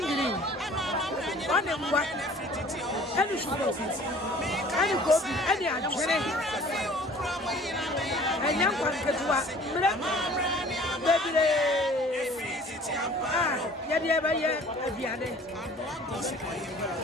One mwa. Any sugar. Any gobi, any ajere. Anyam kwanketwa. Bebire. Ah, ya dia ba ye abiane.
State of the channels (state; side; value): normal; both; correlation 0.50